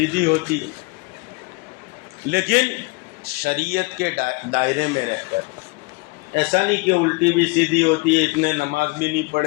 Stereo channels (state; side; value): quieter; right; 26.4 dB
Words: ہوتی ہے، لیکن شریعت کے دائرے میں رہ کر، ایسا نہیں کہ الٹی بھی سیدھی ہوتی ہے، اتنے نماز بھی نہیں